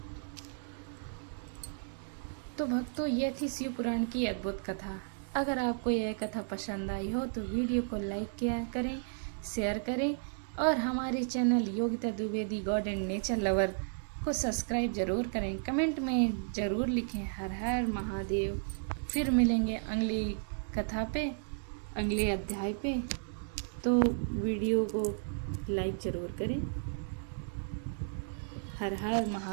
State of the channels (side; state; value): left; silent; digital silence